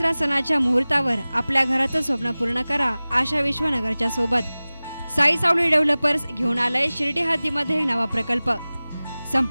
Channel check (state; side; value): inverted; both; correlation -0.98